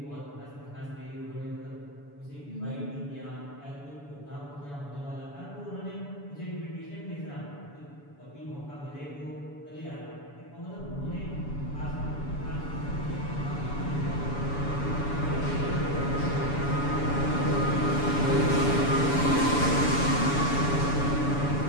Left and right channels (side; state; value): right; late; 7.0 ms